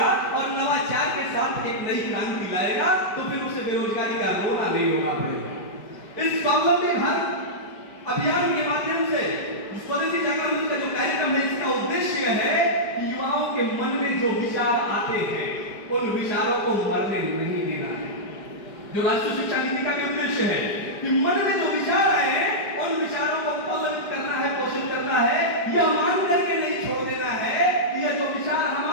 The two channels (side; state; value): right; late; 5.0 ms